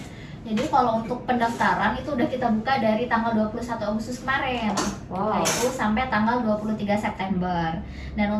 Jadi kalau untuk pendaftaran itu udah kita buka dari tanggal 21 Agustus kemarin. Wow. Nah, itu sampai tanggal 23 September. Dan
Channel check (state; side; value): identical; both; correlation 1.00